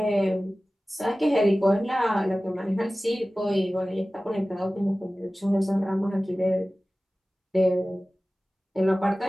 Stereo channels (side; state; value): both; normal; correlation 0.97